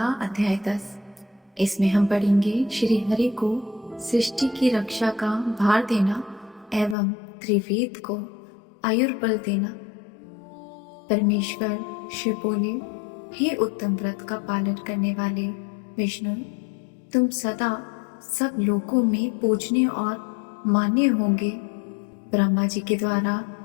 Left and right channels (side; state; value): right; drops out; at 7.0 s